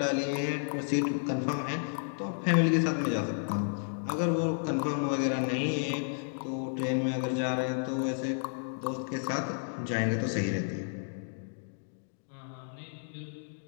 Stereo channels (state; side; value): silent; right; digital silence